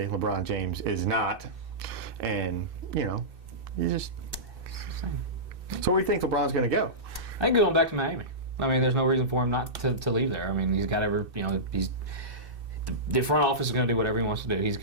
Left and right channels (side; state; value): left; late; 2.6 ms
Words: LeBron James is not. And, you just... So where do you think LeBron's going to go? I think going back to Miami. I mean, there's no reason for him not to leave there. I mean, he's got the front office is going to do whatever he wants to do.